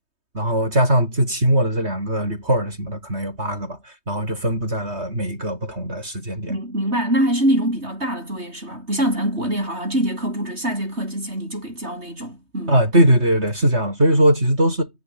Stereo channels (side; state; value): left; late; 3.2 ms